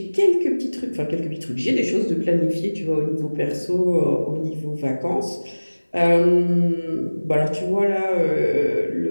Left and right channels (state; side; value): inverted; both; correlation -1.00